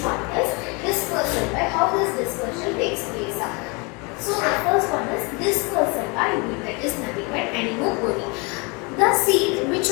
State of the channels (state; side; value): quieter; right; 29.8 dB